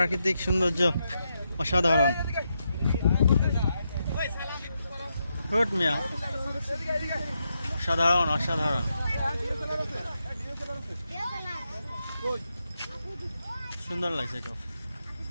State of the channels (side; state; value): both; inverted; correlation -0.83